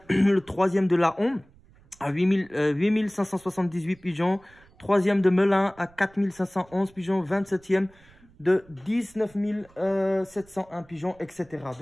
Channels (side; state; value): right; noise; rumble, 28 dB below the sound